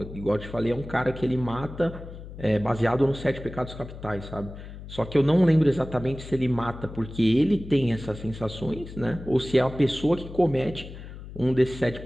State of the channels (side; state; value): left; noise; hum, 13 dB below the sound